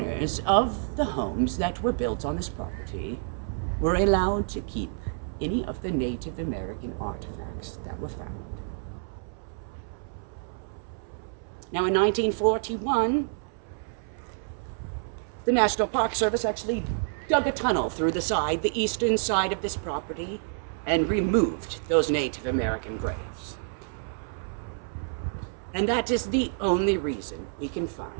of the homes that were built on this property were allowed to keep any of the Native American artifacts that were found. Now, in 1941, the National Park Service actually dug a tunnel through the eastern side of this property, and removed those Native American graves. And that is the only reason we can find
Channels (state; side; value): silent; left; 59 dB below the other